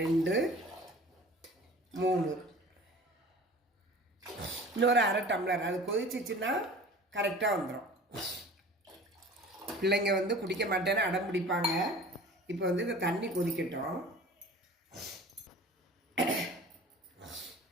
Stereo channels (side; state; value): both; normal; correlation 0.42